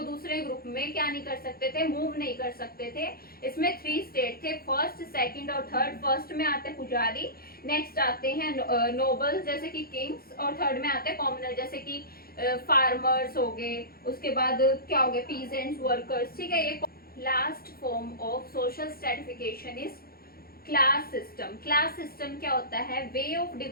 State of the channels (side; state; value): right; late; 0.44 ms